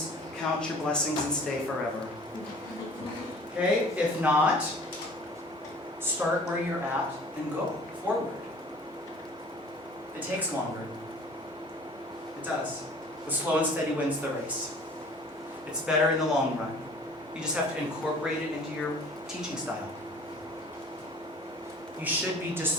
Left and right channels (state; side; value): normal; both; correlation 0.48